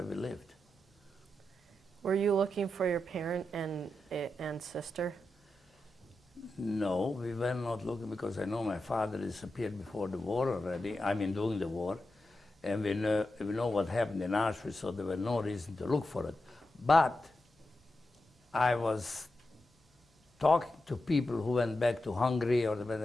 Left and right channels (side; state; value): both; normal; correlation 0.89